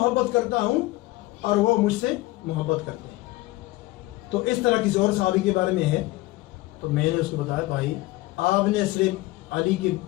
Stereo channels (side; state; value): right; quieter; 19.4 dB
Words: کرتا ہوں اور وہ مجھ سے محبت کرتے ہیں۔ تو اس طرح کسی اور صحابی کے بارے میں ہے تو میں نے اس کو بتایا، بھائی آپ نے صرف علی کی